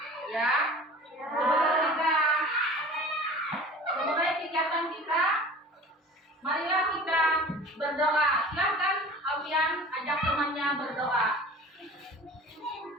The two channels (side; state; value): both; normal; correlation 0.41